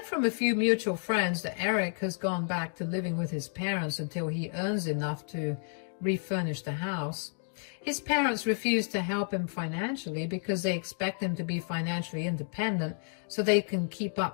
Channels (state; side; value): silent; right; 57 dB below the other